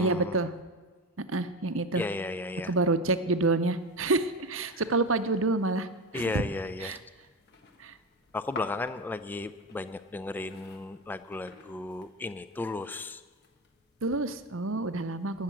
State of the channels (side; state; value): both; normal; correlation 0.21